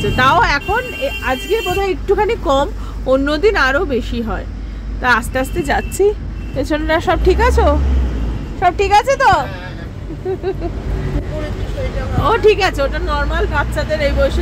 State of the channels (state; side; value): identical; both; correlation 1.00